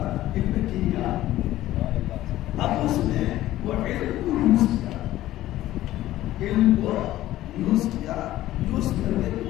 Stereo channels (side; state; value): right; quieter; 14.8 dB